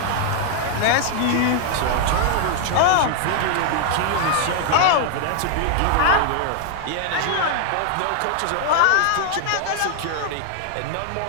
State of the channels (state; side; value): different; both; correlation 0.00